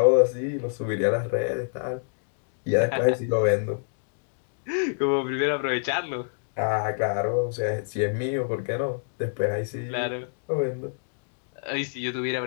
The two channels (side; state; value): right; silent; digital silence